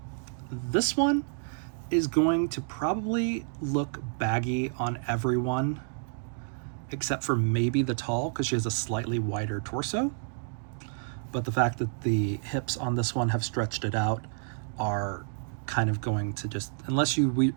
This one is going to probably look baggy on everyone except for maybe the tall, because she has a slightly wider torso. But the fact that the hips on this one have stretched it out are kind of going to just, unless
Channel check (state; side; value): silent; left; 58 dB below the other